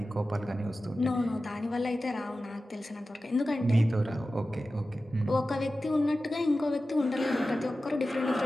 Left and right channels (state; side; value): normal; both; correlation 0.94